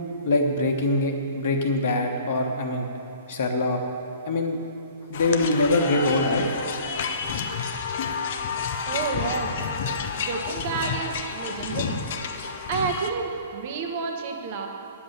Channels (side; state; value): both; inverted; correlation -0.48